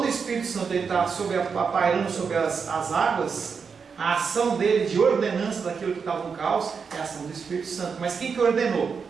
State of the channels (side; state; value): left; quieter; 5.8 dB